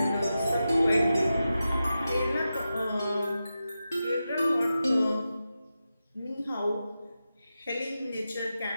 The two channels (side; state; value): both; inverted; correlation -0.91